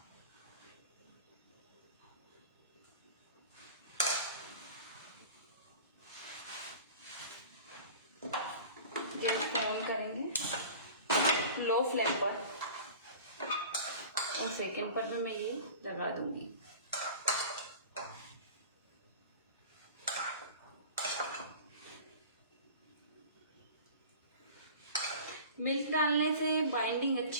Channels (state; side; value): inverted; both; correlation -0.40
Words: गैस को ऑन करेंगे लो फ्लेम पर और सेकंड पर भी मैं ये लगा दूंगी। मिल्क डालने से बाइंडिंग